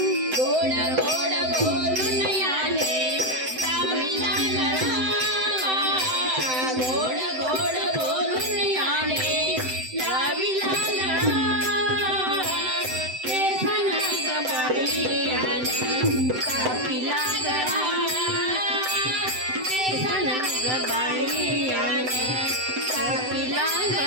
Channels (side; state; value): left; late; 7.9 ms